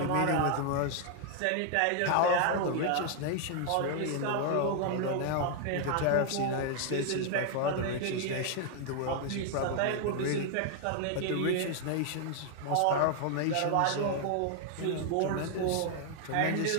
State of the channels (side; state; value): both; different; correlation 0.00